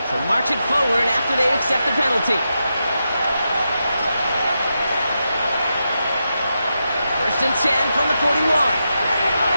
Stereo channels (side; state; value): both; inverted; correlation -0.87